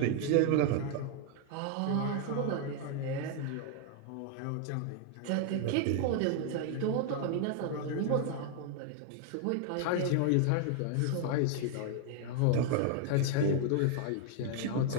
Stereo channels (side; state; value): both; different; correlation 0.00